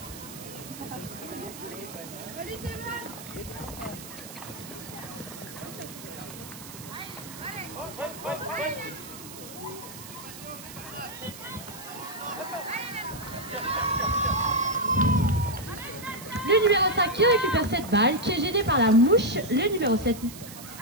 Le numéro 5 qui récupère cette balle, qui est gêné par la mouche. Le numéro 7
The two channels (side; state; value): right; noise; hiss, 14 dB below the sound